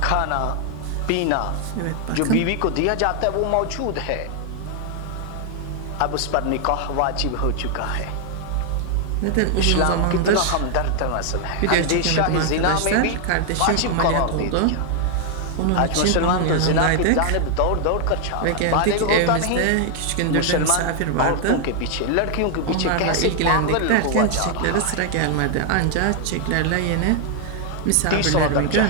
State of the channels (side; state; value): both; different; correlation 0.00